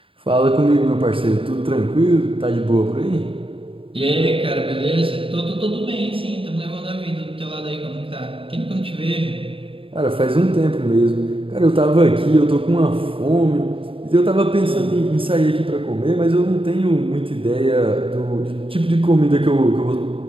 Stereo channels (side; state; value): left; late; 0.26 ms